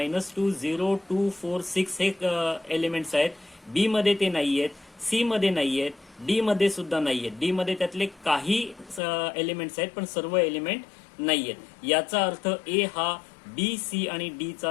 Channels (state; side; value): drops out; right; at 9.0 s